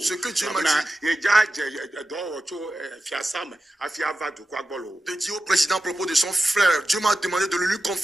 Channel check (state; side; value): normal; both; correlation 0.93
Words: que Dieu m'a dit de dire au président à propos de son frère. Dieu m'a demandé de le lui